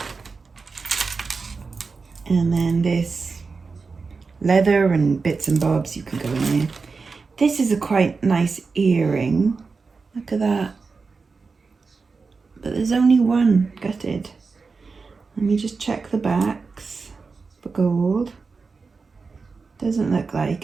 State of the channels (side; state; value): left; quieter; 4.5 dB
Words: And then this leather and bits and bobs, you can go in there. This is a quite nice earring. Look at that. But there's only one gutted. Let me just check the backs for gold. Doesn't look like